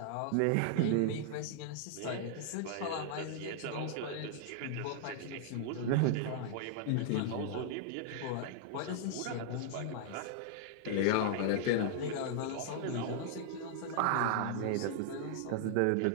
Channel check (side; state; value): both; different; correlation -0.01